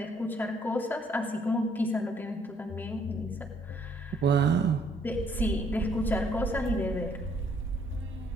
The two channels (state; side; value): normal; both; correlation 0.66